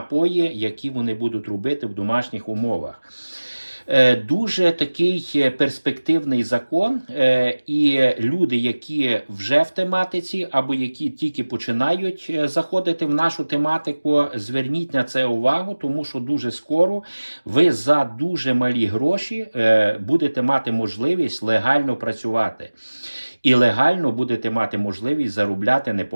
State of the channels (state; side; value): inverted; both; correlation -1.00